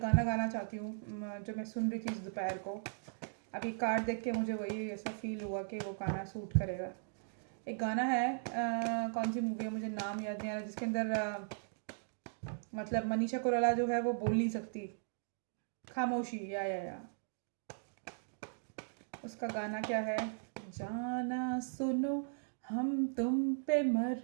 गाना गाना चाहती हूँ जो मैं सुन रही थी इस दोपहर को। अभी कार्ड देख के मुझे वही ऐसा फील हुआ कि वो गाना सूट करेगा। एक गाना है, कौन सी मूवी है मुझे नाम याद नहीं आ रहा, जिसके अंदर मतलब मनीषा कोइराला जो है वो बोल नहीं सकती, खामोशी, या उसका गाना क्या है, जाना सुनो हम तुम पे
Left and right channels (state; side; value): silent; left; digital silence